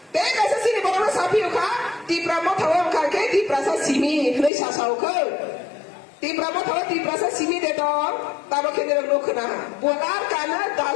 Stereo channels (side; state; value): right; drops out; at 4.5 s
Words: tega sa sini bono sapi ka di pramothawam ka ke di prasa simi hlei sasau ke di pramothawam di prasa simi de dong tabo kene lo khna bolar kana